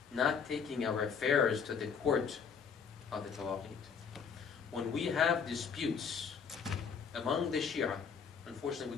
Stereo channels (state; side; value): quieter; right; 6.4 dB